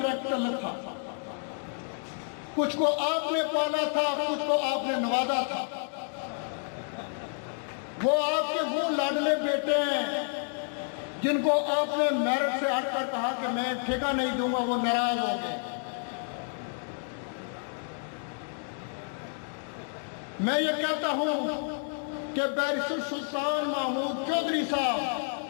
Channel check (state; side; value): silent; right; 58 dB below the other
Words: ताल्लुक था। कुछ को आपने पाला था, कुछ को आपने नवाजा था। वो आपके वो लाडले बेटे हैं जिनको आपने मेरिट से हटकर कहा कि मैं ठेका नहीं दूंगा, वो नाराज हो गए। मैं ये कहता हूं कि बैरिस्टर सुल्तान महमूद चौधरी साहब,